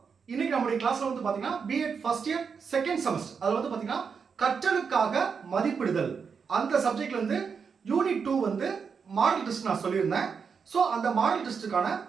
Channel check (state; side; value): quieter; left; 6.0 dB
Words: இன்னைக்கு நம்மளுடைய கிளாஸ்ல வந்து பாத்தீங்கன்னா BEd first year second semester அதுல வந்து பாத்தீங்கன்னா கற்றலுக்காக மதிப்பிடுதல் அந்த சப்ஜெக்ட்ல இருந்து யூனிட் 2 வந்து மாடல் டெஸ்ட் நான் சொல்லியிருந்தேன். ஸோ அந்த மாடல் டெஸ்ட்டுக்கான